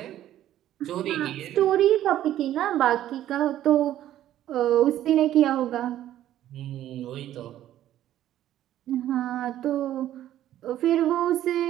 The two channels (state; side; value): quieter; left; 12.5 dB